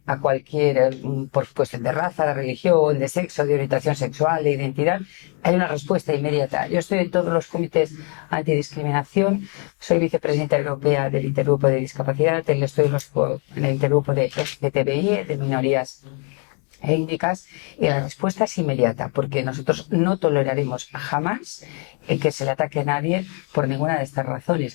a cualquier, por cuestión de raza, de religión, de sexo, de orientación sexual, de identidad, hay una respuesta inmediata. Yo estoy en todos los comités antidiscriminación, soy vicepresidenta europea del Intergrupo de Discapacidad, estoy en el Intergrupo de LGTBI, de minorías étnicas, y la respuesta es inmediata, porque nosotros no toleraremos jamás que se le ataque a nadie por ninguna de estas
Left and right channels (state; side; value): quieter; right; 38.0 dB